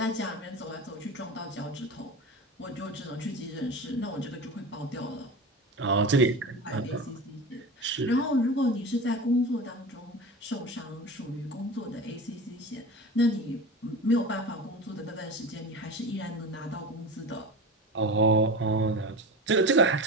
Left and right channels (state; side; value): normal; both; correlation 0.29